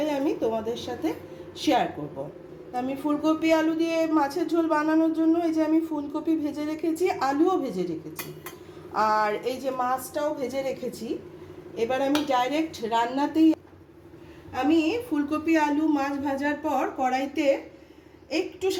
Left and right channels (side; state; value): both; identical; correlation 1.00